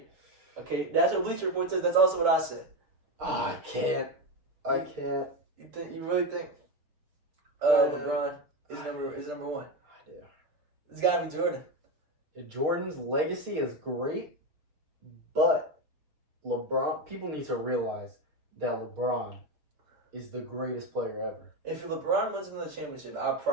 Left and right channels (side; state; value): left; late; 6.6 ms